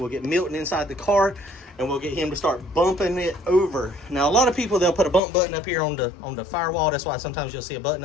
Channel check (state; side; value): drops out; right; at 5.2 s